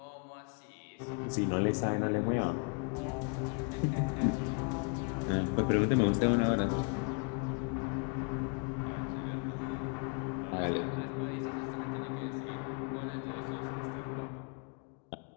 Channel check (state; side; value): quieter; right; 37.9 dB